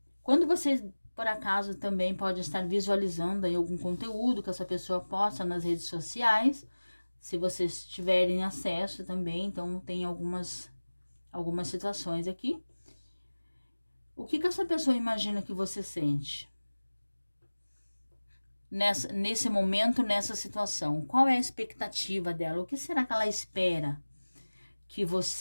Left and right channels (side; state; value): both; inverted; correlation -1.00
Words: quando vocês por acaso também pode estar visualizando aí algum conteúdo que essa pessoa posta nas redes sociais, se vocês tiverem acesso também. Então tem algumas situações aqui. O que essa pessoa imagina que você sente nesse momento, nessa situação? Qual é a expectativa dela? O que será que ela espera que